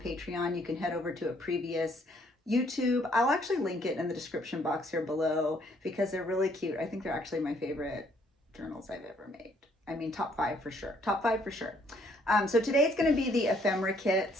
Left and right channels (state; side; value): normal; both; correlation 0.66